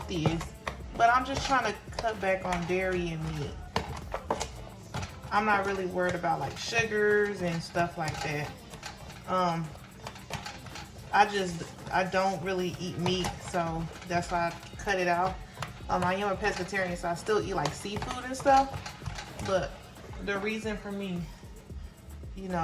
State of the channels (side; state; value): both; identical; correlation 1.00